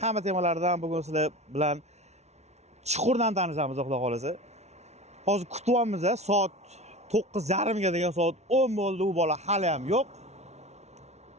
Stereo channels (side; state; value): left; late; 0.32 ms